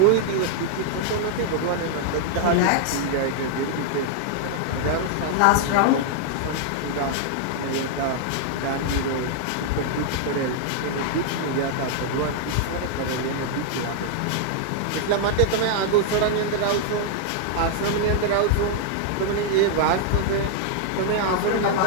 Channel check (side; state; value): both; different; correlation 0.00